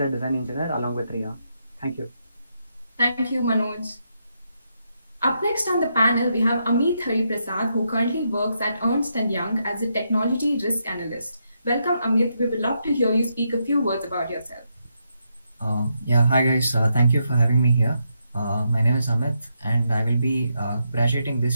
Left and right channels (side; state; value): both; inverted; correlation -0.81